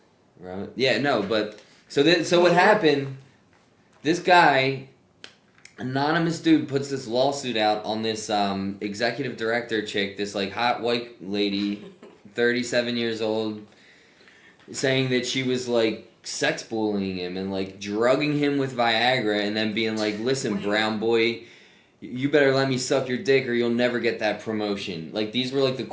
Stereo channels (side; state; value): both; identical; correlation 1.00